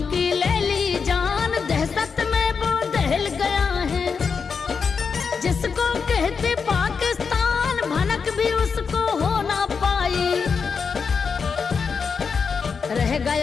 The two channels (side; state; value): right; quieter; 5.6 dB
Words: की ले ली जान। दहशत में वो दहल गया है, जिसको कहते पाकिस्तान, भनक भी उसको हो ना पाई। रह